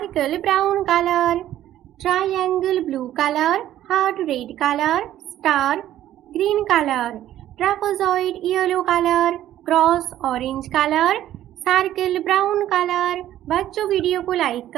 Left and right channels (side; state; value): left; quieter; 12.7 dB